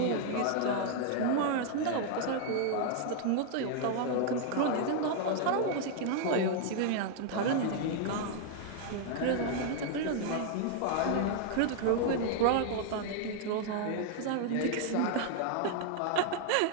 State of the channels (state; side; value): different; both; correlation 0.00